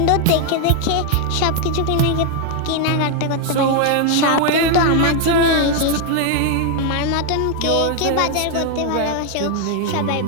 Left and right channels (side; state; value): both; different; correlation 0.00